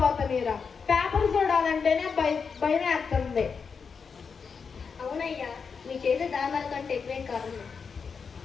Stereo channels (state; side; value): quieter; right; 5.7 dB